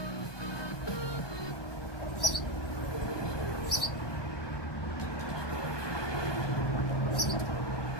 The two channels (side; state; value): right; late; 1.2 ms